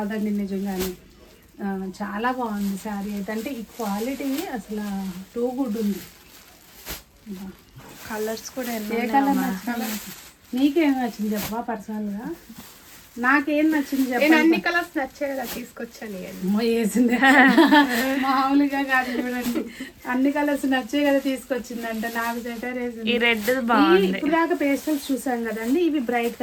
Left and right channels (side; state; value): both; identical; correlation 1.00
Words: నిజంగానే. చాలా బాగుంది శారీ అయితే. అంటే ఈ క్వాలిటీ అసలు టూ గుడ్ ఉంది. కలర్స్ కూడా ఎన్నో ఏ కలర్ నచ్చింది? నీకేం నచ్చింది చెప్పవా పర్సనల్గా? నాకేం నచ్చింది నేను చెప్పండి. అన్ని కలర్స్ నచ్చేలా తీసుకొచ్చాను ఇవన్నీ. అమ్మో, వేసింది మామూలుగా కాదు చూడండి, అన్ని కలర్స్ నచ్చే కదా తీసుకొచ్చిందంటే. నాకు సెటర్ వేసింది. ఈ రెడ్ బాగుంది. ఇప్పుడు దాకా పేస్టల్స్ చూసాం కదండి, ఇవి బ్రైట్